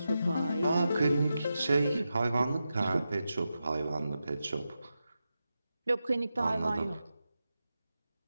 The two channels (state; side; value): inverted; both; correlation -0.90